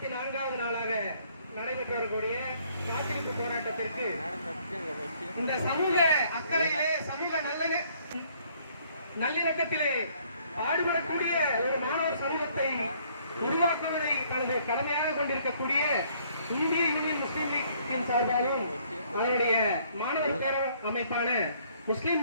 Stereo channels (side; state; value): both; inverted; correlation -0.63